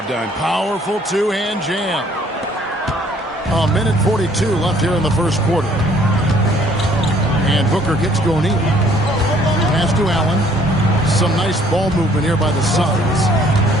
done. Powerful two-hand jam. A minute 42 left here in the first quarter. And Booker gets going in. Pass to Allen. Some nice ball movement here by the Suns.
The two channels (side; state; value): both; normal; correlation 0.60